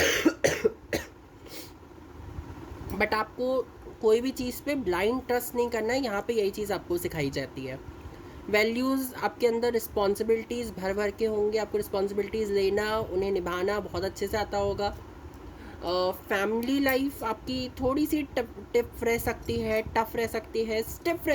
बट आपको कोई भी चीज़ पे ब्लाइंड ट्रस्ट नहीं करना है। यहाँ पे यही चीज़ आपको सिखाई जाती है। वैल्यूज़ आपके अंदर, रिस्पॉन्सिबिलिटीज़ भर भर के होंगे, आपको रिस्पॉन्सिबिलिटीज़ लेना, उन्हें निभाना बहुत अच्छे से आता होगा। फैमिली लाइफ आपकी थोड़ी सी टिफ रह सकती है, टफ रह सकती है, स्टिफ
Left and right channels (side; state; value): both; identical; correlation 1.00